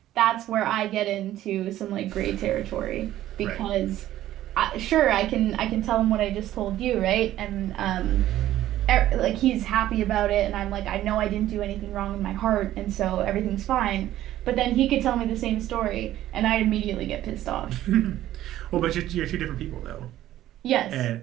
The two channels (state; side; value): quieter; left; 13.6 dB